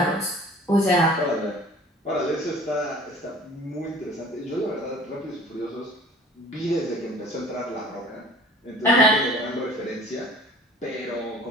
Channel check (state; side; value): normal; both; correlation 0.48